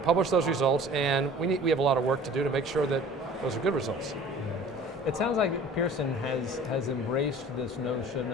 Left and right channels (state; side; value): normal; both; correlation 0.46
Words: publish those results, and we have a lot of work to do to make sure that those are good results. It sounds like Pearson has embraced this notion